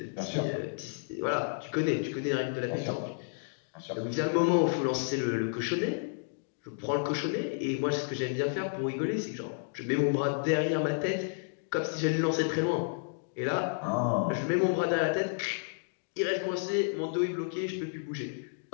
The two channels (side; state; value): right; silent; digital silence